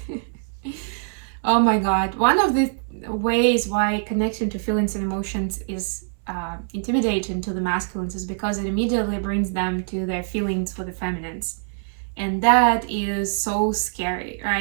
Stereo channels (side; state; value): left; silent; 63 dB below the other